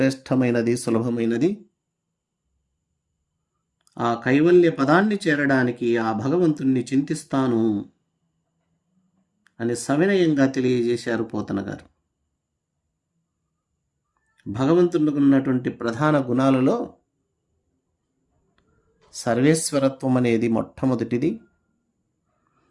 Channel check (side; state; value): both; identical; correlation 1.00